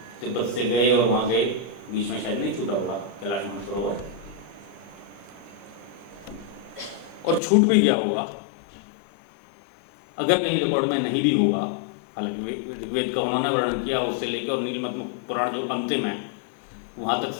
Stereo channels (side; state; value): right; drops out; at 7.4 s